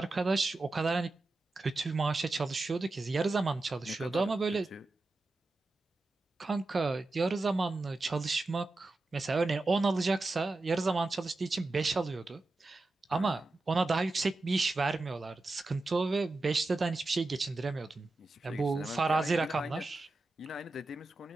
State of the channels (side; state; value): left; quieter; 3.1 dB